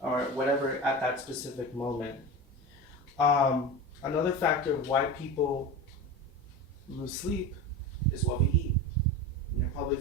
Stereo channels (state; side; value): normal; both; correlation 0.26